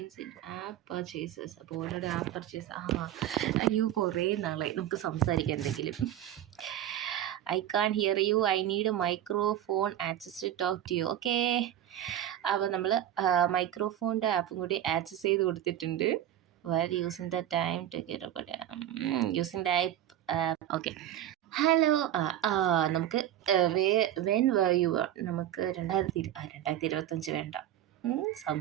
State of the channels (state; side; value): quieter; left; 11.9 dB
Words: in-app purchases. അപ്പോൾ already app purchase അയ്യോ കുറേ നാളായി നമുക്ക് സംസാരിക്കാൻ എന്തെങ്കിലും. I can't hear you, I need microphone access to talk to you. Okay, അപ്പോൾ നമ്മൾ മൈക്രോഫോണിൻ്റെ ആപ്പും കൂടി ആക്സസ് ചെയ്ത് കൊടുത്തിട്ടുണ്ട്. Well using the time to get using the app. Okay, hello. നമുക്ക് വെൻ യു നമുക്ക് 2025 വേണ്ട,